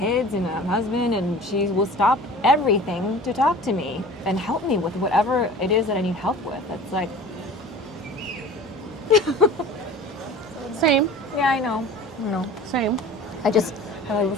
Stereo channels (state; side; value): noise; right; hum, 24 dB below the sound